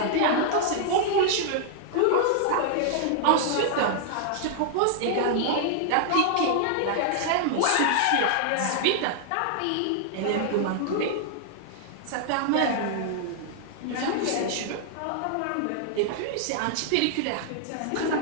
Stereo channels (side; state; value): both; different; correlation -0.01